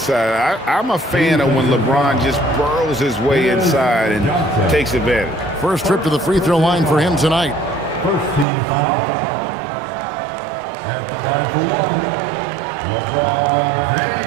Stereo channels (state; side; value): drops out; left; at 8.5 s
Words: I'm a fan of when LeBron just burrows his way inside and takes advantage. First trip to the free throw line for him tonight. First team foul. At the line for 1, LeBron